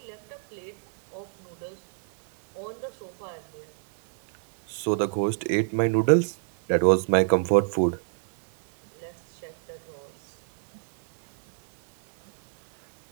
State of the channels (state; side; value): silent; left; 58 dB below the other